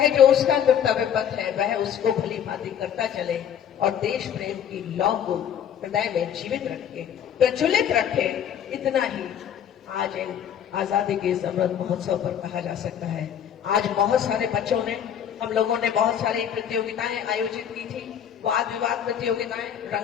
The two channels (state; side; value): quieter; right; 9.1 dB